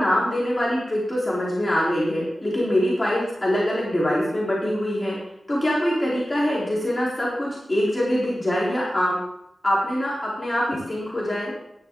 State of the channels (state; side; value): normal; both; correlation 0.94